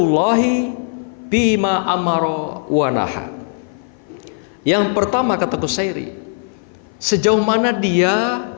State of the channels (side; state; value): right; silent; 55 dB below the other